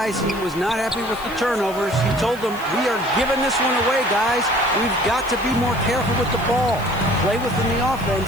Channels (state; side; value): noise; left; hiss, 19 dB below the sound